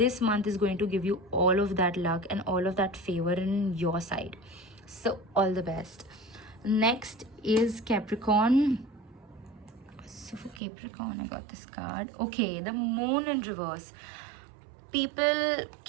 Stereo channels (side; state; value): left; drops out; at 10.6 s